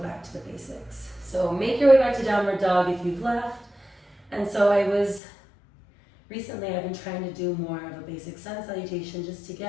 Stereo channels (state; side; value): drops out; right; at 5.2 s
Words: to the basics. So make your way back to downward dog if you've left. And so recently I've been trying to do more of a basic sun salutation just to